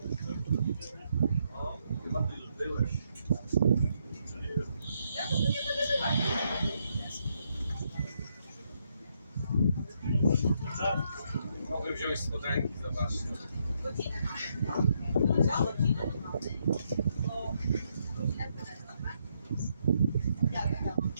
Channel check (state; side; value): inverted; both; correlation -0.76